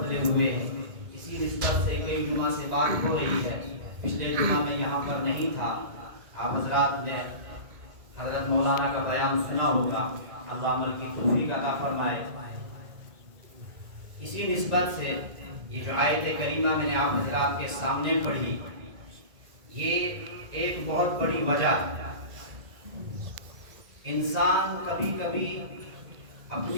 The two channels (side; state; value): left; late; 1.9 ms